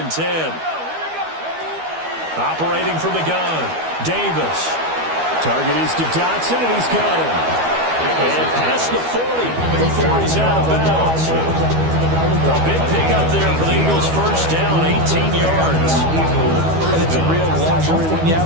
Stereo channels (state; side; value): late; left; 12 ms